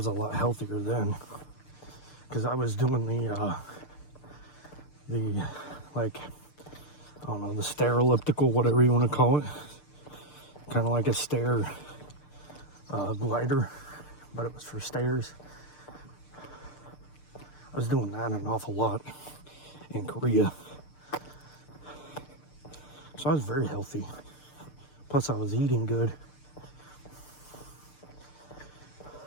a lot healthier then. Because I was doing the like, I don't know, the stair elliptical, whatever you want to call it. Kind of like a stair glider, but it was for stairs. I was doing that an awful lot in Korea. So I was very healthy. Plus I was eating good.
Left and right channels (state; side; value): late; right; 6.7 ms